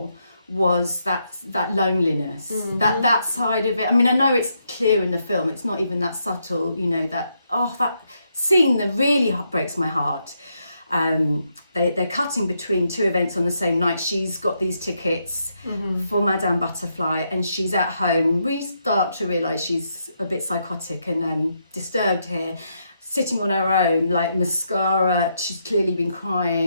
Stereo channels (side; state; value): both; inverted; correlation -0.79